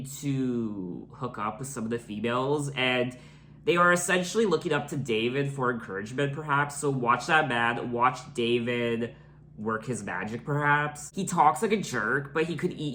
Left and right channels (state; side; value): identical; both; correlation 1.00